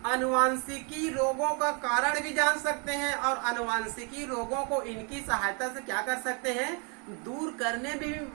आनुवांशिकी रोगों का कारण भी जान सकते हैं और आनुवांशिकी रोगों को इनकी सहायता से क्या कर सकते हैं, दूर करने में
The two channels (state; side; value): quieter; left; 35.6 dB